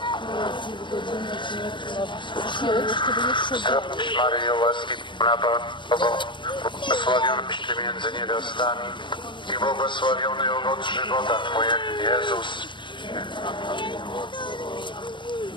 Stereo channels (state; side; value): late; right; 0.23 ms